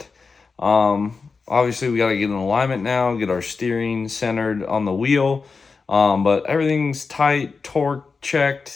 obviously we gotta get in alignment now, get our steering centered on the wheel. But everything's tight, torque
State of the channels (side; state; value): right; quieter; 4.7 dB